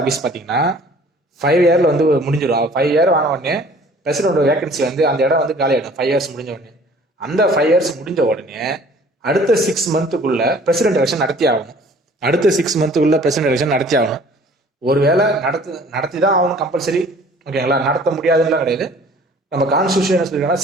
பார்த்தீங்கன்னா 5 இயர்ல வந்து முடிஞ்சிடும். 5 இயர் ஆன உடனே பிரசிடென்ட் வேகன்சி வந்து அந்த இடம் வந்து காலி ஆகிடும் 5 இயர்ஸ் முடிஞ்ச உடனே. அந்த 5 இயர்ஸ் முடிஞ்ச உடனே அடுத்த 6 மந்த்துக்குள்ள பிரசிடென்ட் எலெக்ஷன் நடத்தி ஆகணும். அடுத்த 6 மந்த்துக்குள்ள பிரசிடென்ட் எலெக்ஷன் நடத்தி ஆகணும். ஒருவேளை நடத்தி தான் ஆகணும் கம்பல்சரி. ஓகேங்களா, நடத்த முடியாதுன்னு கிடையாது. நம்ம கான்ஸ்டியூஷன் சொல்லிருக்கோம்னா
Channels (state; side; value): normal; both; correlation 0.51